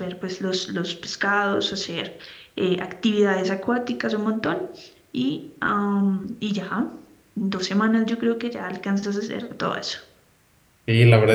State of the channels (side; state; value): both; identical; correlation 1.00